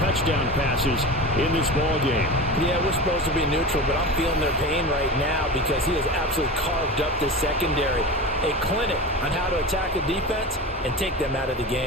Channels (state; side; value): normal; both; correlation 0.29